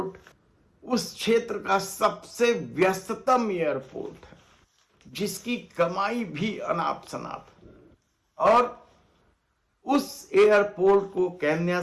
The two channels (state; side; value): identical; both; correlation 1.00